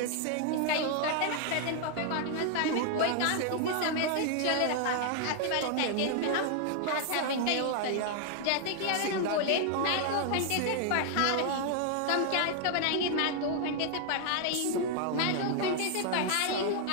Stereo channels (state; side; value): different; both; correlation 0.00